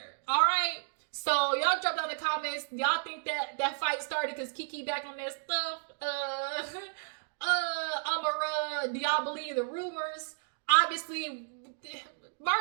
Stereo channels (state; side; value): silent; left; digital silence